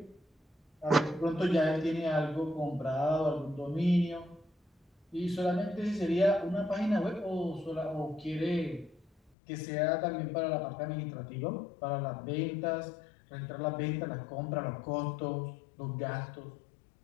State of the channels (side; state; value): right; drops out; at 9.3 s